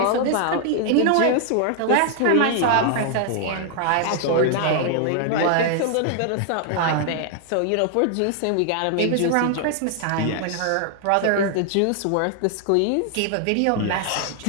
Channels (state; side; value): different; both; correlation 0.00